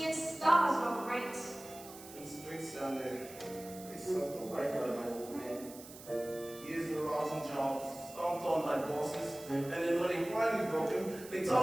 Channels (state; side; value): noise; right; hiss, 16 dB below the sound